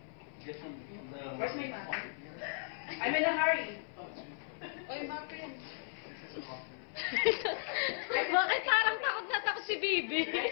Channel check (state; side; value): silent; right; 54 dB below the other